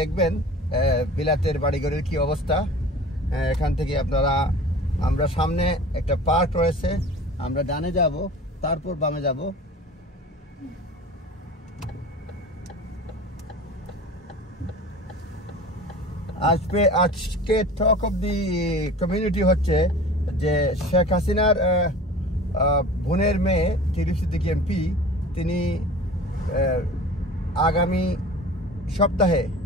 বিলাতের বাড়িঘরের কি অবস্থা। এখান থেকে আমরা সামনে একটা পার্ক রয়েছে, আমরা ডানে যাব, তারপর বামে যাব। আজকে টক অফ দি কমিউনিটি হচ্ছে যে শেখ হাসিনার বোনের মেয়ে টিউলিপ সিদ্দিকী এমপি, তিনি আগামী সপ্তাহে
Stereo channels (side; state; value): both; normal; correlation 0.40